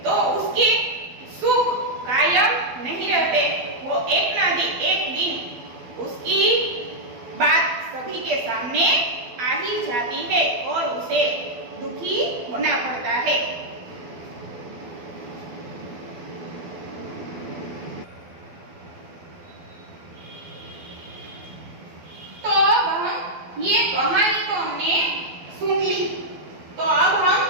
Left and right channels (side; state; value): left; late; 12 ms